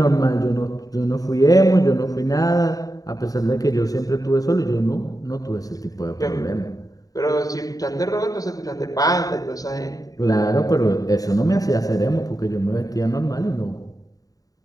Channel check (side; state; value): right; late; 0.18 ms